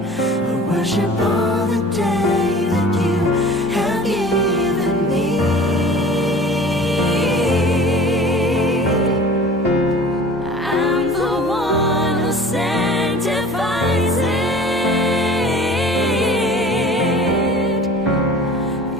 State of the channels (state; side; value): normal; both; correlation 0.44